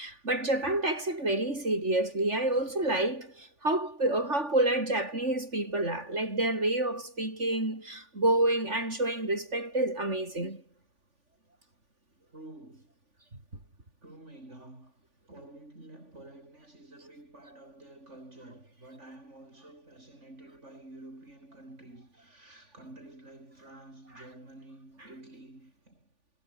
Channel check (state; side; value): late; left; 3.5 ms